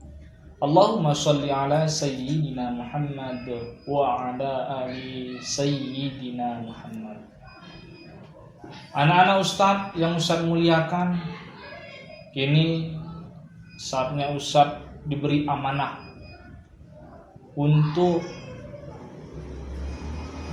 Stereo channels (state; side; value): identical; both; correlation 1.00